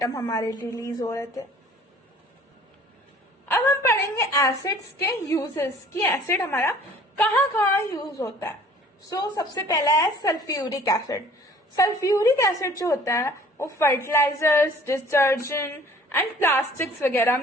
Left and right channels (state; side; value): normal; both; correlation 0.52